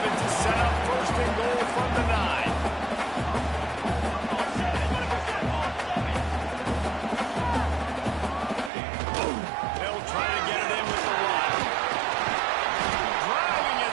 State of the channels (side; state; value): left; drops out; at 8.7 s